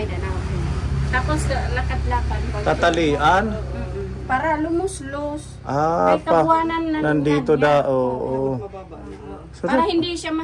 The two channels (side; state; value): both; identical; correlation 1.00